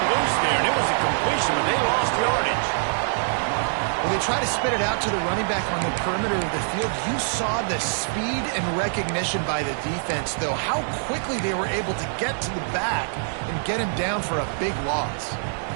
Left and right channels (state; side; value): silent; left; digital silence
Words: loose there, and it was a completion, but they lost yardage. When they try to spit it out to the running back on the perimeter of the field, you saw the speed and recognition by the defense, though, how quickly they were able to get to the back and get him down for a big loss.